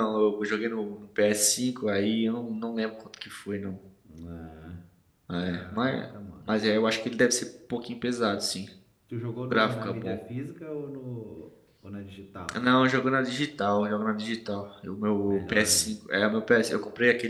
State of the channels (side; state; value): both; identical; correlation 1.00